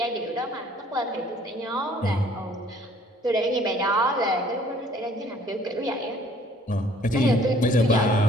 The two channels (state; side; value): normal; both; correlation 0.58